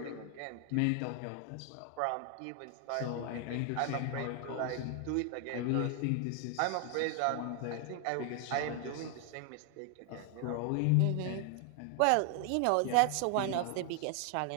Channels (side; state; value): both; different; correlation 0.00